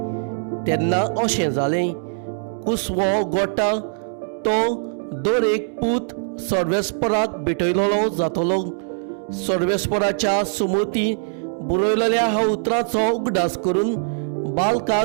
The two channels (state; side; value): silent; left; digital silence